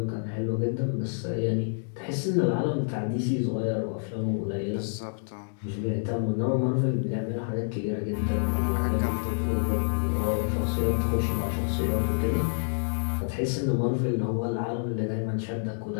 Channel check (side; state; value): right; silent; digital silence